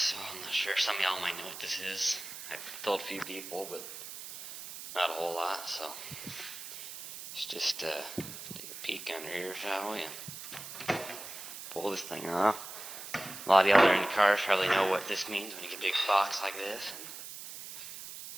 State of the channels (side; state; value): right; noise; hiss, 11 dB below the sound